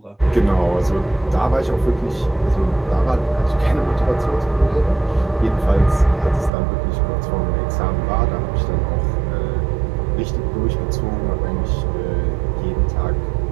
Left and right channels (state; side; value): drops out; left; at 6.5 s